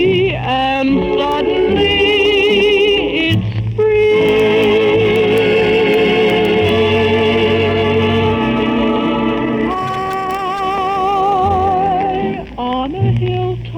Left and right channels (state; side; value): identical; both; correlation 1.00